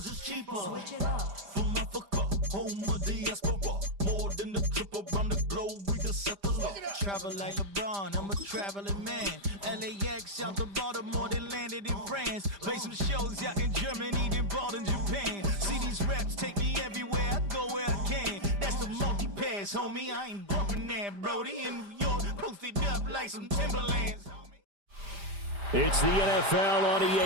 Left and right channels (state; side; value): late; left; 5.0 ms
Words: it's cheaper. Switch it up. From Africa, home of the diaspora. More than a trip around the globe, we just set the law. Travel like LeBron, I'm a traveling man. LAX out to Baltimore, then landed in France. Play some shows out in Germany, then bought in Japan. See these reps take me everywhere, I go where I can. That's the multi-pass, homie, I ain't bumping that, Brody. In New York, posted up like some Timberlands. It's the NFL on